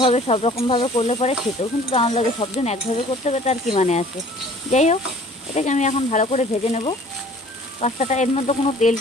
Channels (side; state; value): both; normal; correlation 0.51